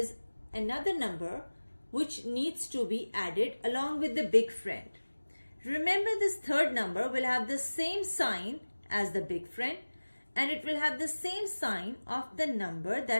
another number which needs to be added along with the big friend. Remember, this third number will have the same sign as the big friend, and it will have the same sign of the number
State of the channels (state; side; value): inverted; both; correlation -1.00